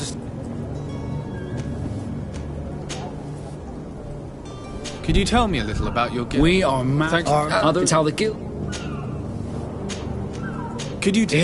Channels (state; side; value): identical; both; correlation 1.00